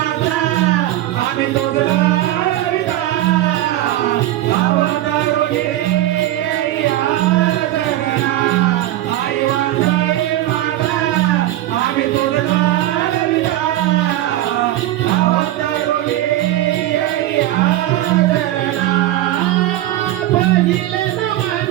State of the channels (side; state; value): left; quieter; 14.5 dB